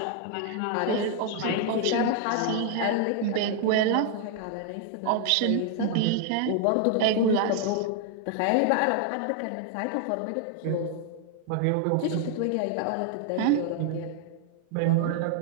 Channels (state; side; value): different; both; correlation 0.00